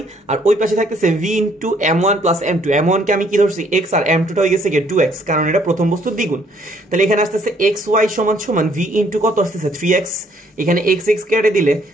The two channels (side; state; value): both; normal; correlation 0.64